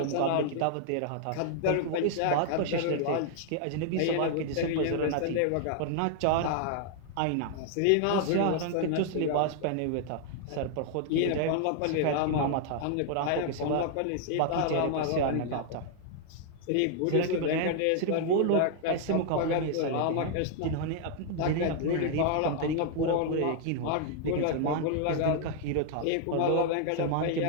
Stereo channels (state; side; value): different; both; correlation 0.00